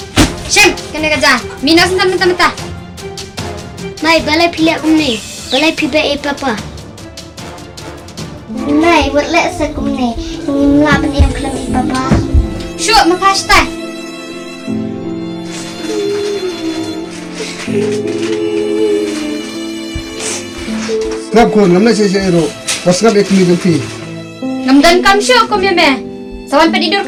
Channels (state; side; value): identical; both; correlation 1.00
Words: Shem, kena kerja. Mina sentam mentah-mentah. Mai balai pilih aku ni. Balai pilih papa. Mai buat lek sekum ni. Melapan yang kelam papa. Syuk makasih. Ngap kun ngamna saya ru. Pas ngap ek mi fi. Ngamdan kam syuk kum ya meh. Sawan pedidur